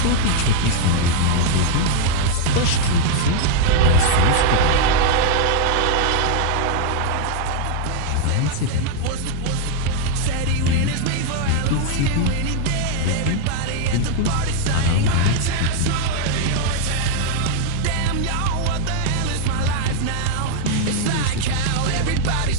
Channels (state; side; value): different; both; correlation 0.00